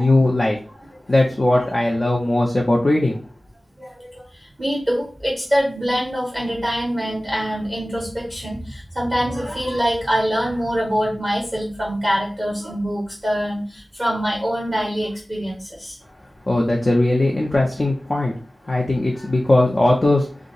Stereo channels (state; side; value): normal; both; correlation 0.97